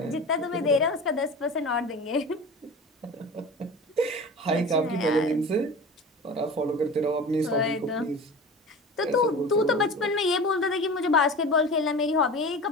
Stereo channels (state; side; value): normal; both; correlation 0.34